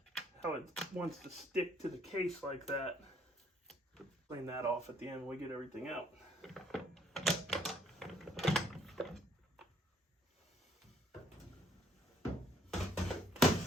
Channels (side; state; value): both; normal; correlation 0.65